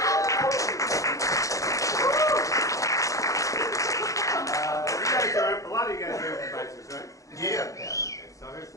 A lot of you guys are improvisers, right? Yeah. Okay, so here's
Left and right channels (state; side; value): late; right; 0.16 ms